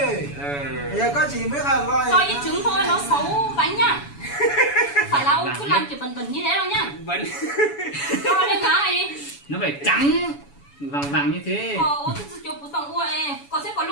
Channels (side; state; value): right; late; 7.0 ms